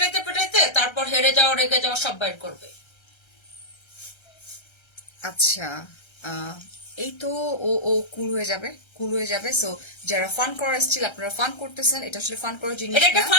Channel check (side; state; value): right; late; 1.3 ms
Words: পেটাইতে তারপর হেরে যাওয়া, রেগে যাওয়া সব বাইর করবে। আচ্ছা, এই তো ও ও কুল হয়ে যাবে। সো যারা ফান করার এসেছিল, আপনারা ফান করতেছেন, এটা আসলে ফান করার জিনিস এটা একটা না,